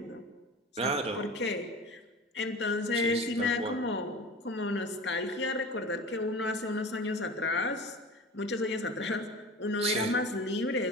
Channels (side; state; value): both; normal; correlation 0.35